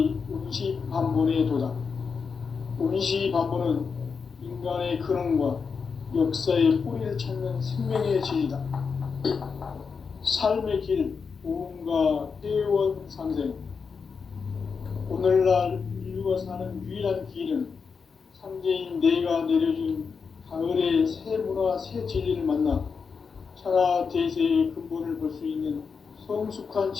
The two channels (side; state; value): right; quieter; 5.5 dB